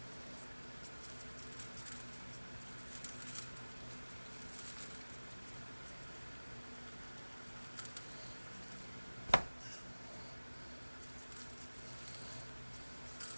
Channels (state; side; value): inverted; both; correlation -1.00